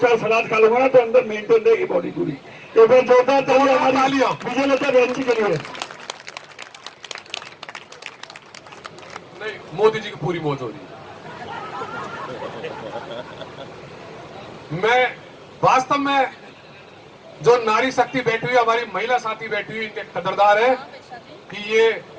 सलाद खा लूंगा ना, तो अंदर मेंटेन रहेगी बॉडी पूरी। तो फिर जोरदार तालियां हमारी विजयलता बहन जी के लिए। नहीं, मोदी जी की पूरी मौज हो रही है। मैं वास्तव में जो नारी शक्ति बैठी हुई, हमारी महिला साथी बैठी हुई, इनके कदरदार है कि ये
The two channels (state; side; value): identical; both; correlation 1.00